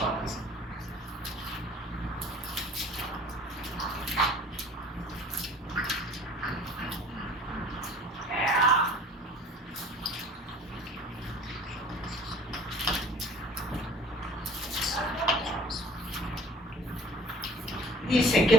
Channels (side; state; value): both; normal; correlation 0.49